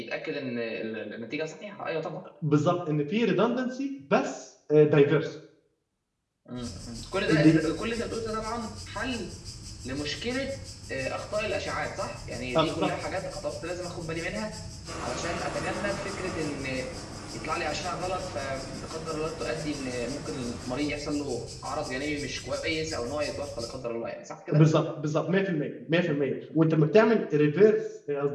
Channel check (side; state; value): both; identical; correlation 1.00